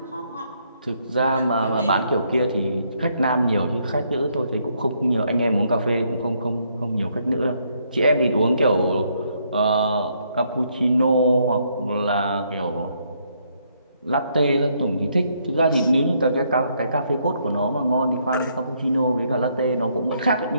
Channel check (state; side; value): inverted; both; correlation -0.72